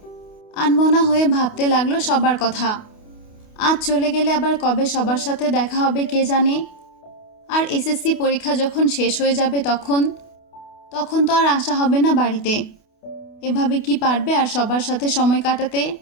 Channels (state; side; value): late; right; 28 ms